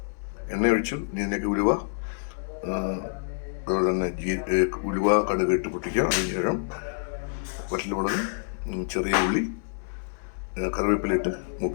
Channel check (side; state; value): right; silent; 60 dB below the other